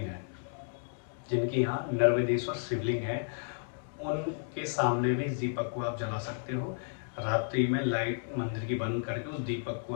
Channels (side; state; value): right; silent; digital silence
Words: है, जिनके यहाँ नर्मदेश्वर शिवलिंग है, उनके सामने भी इस दीपक को आप जला सकते हो। रात्रि में लाइट मंदिर की बंद करके उस दीपक को